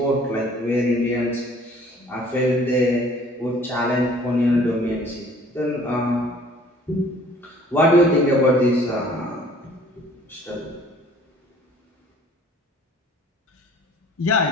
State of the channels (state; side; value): normal; both; correlation 0.54